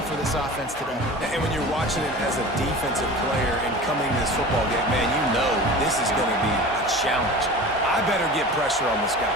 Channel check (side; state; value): both; normal; correlation 0.36